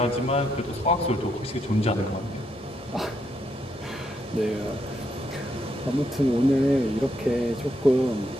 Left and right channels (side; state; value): both; normal; correlation 0.78